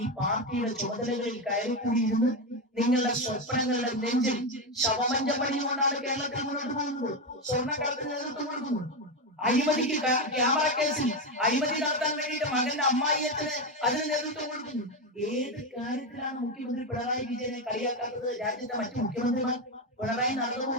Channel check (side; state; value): both; normal; correlation 0.11